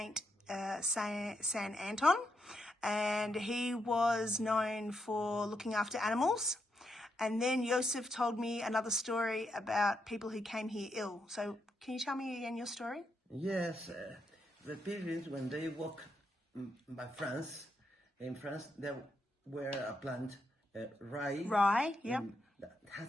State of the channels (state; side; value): normal; both; correlation 0.81